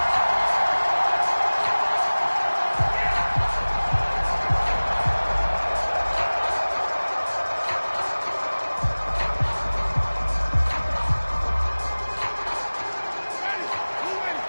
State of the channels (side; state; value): both; inverted; correlation -1.00